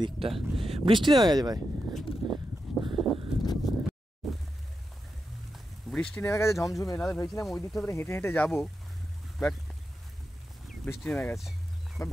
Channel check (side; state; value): both; normal; correlation 0.88